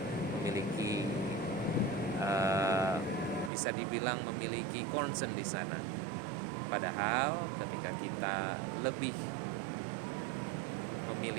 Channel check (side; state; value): left; drops out; at 3.5 s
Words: memiliki bisa dibilang memiliki concern di sana. Padahal ketika kita lebih